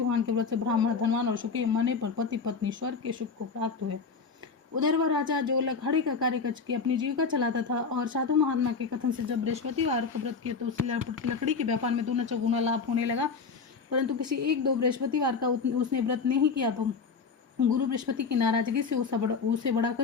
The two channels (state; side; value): quieter; right; 5.1 dB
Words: के व्रत से ब्राह्मण धनवान और सुखी मने पर पति पत्नी स्वर्ग के सुख को प्राप्त हुए। उधर वह राजा जो लखाड़े का कार्य करके अपनी जीविका चलाता था और साधु महात्मा के कथन से जब बृहस्पतिवार को व्रत किया तो उसे लकड़ी के व्यापार में दूना चौगुना लाभ होने लगा। परंतु किसी एक दो बृहस्पतिवार का उसने व्रत नहीं किया तो गुरु बृहस्पति की नाराजगी से उसे बड़ा